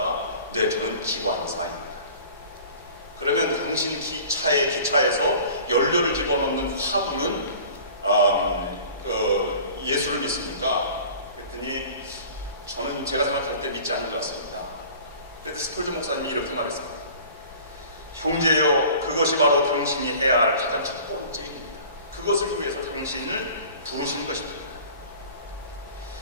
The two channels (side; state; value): both; inverted; correlation -0.44